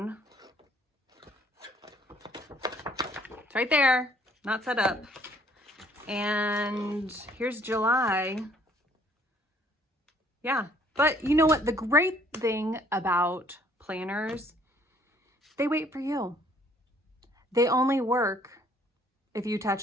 It's right there, not set up. And here's July. Yeah, but you know what? The great thing about planners, they wait for you. They only work if you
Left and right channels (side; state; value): both; normal; correlation 0.61